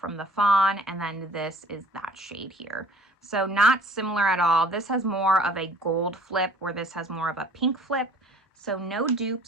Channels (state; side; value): normal; both; correlation 0.51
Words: the Fawn, and then this is that shade here. So not similar at all. This has more of a gold flip, where this has more of a pink flip. So no